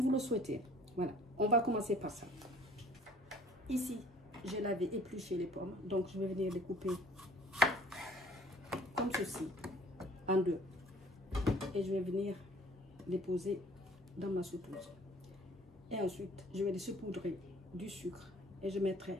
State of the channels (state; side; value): normal; both; correlation 0.53